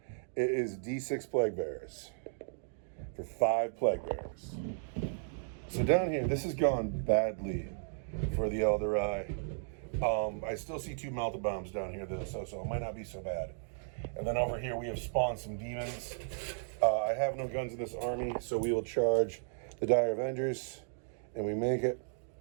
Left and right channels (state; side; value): silent; left; digital silence